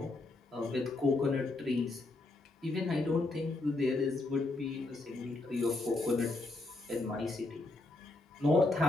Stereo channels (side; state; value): right; quieter; 3.1 dB